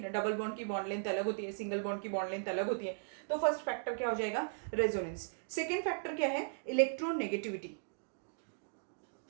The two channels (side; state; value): left; silent; digital silence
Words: डबल बॉन्ड की बॉन्ड लेंथ अलग होती है, सिंगल बॉन्ड की बॉन्ड लेंथ अलग होती है। तो फर्स्ट फैक्टर क्या हो जाएगा, रेजोनेंस। सेकेंड फैक्टर क्या है, इलेक्ट्रोनेगेटिविटी।